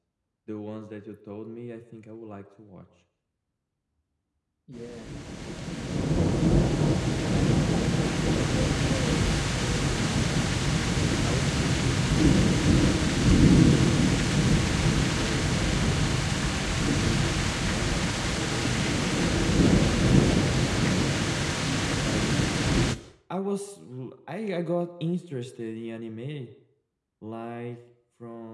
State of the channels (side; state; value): both; identical; correlation 1.00